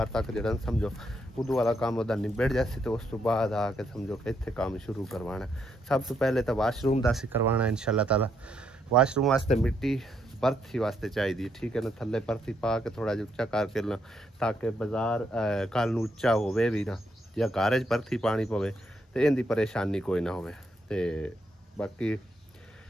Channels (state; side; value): normal; both; correlation 0.76